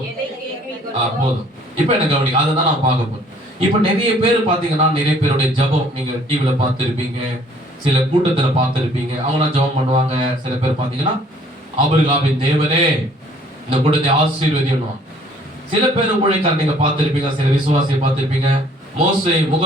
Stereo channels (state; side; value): normal; both; correlation 0.58